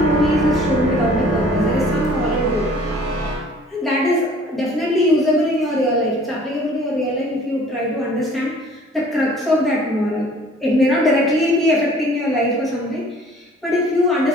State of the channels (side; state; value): both; normal; correlation 0.52